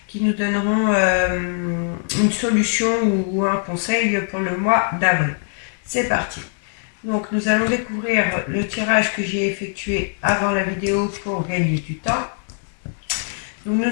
qui nous donneront une solution ou un conseil pour le mois d'avril. C'est parti. Donc nous allons découvrir le tirage que j'ai effectué avant la vidéo pour gagner du temps. Donc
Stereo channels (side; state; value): right; silent; 57 dB below the other